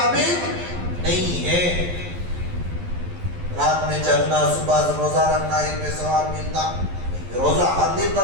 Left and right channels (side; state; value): left; late; 12 ms